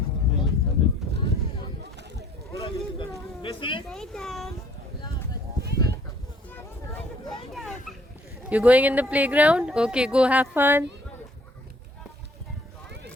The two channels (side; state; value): both; normal; correlation 0.60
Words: Stay down. You're going in the playground? Okay, go have fun.